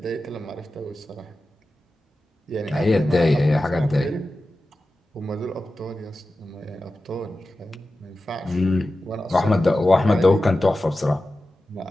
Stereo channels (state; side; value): normal; both; correlation 0.94